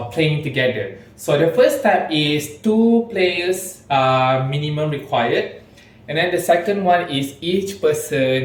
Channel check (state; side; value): identical; both; correlation 1.00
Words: playing together. So the first step is 2 players minimum required. And then the second one is each